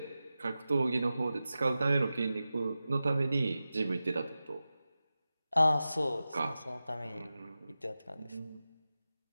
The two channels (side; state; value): both; inverted; correlation -0.94